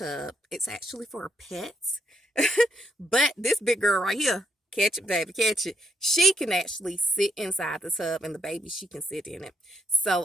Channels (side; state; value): both; normal; correlation 0.76